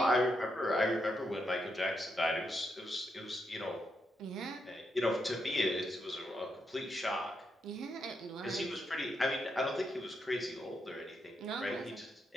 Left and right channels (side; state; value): both; normal; correlation 0.81